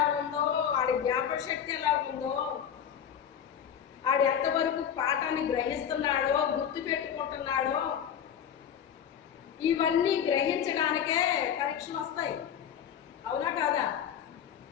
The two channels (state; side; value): quieter; right; 8.7 dB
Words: ఉందో, ఆడి జ్ఞాపక శక్తి ఎలా ఉందో, ఆడు ఎంతవరకు పాఠాన్ని గ్రహిస్తున్నాడో, గుర్తు పెట్టుకుంటున్నాడో, ఇవన్నీ గ్రహించడానికే పరీక్షలు వస్తాయి. అవునా కాదా?